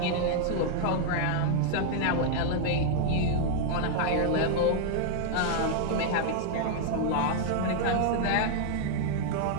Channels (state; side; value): different; both; correlation -0.01